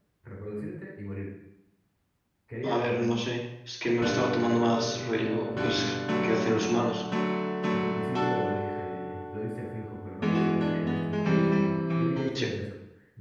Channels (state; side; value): identical; both; correlation 1.00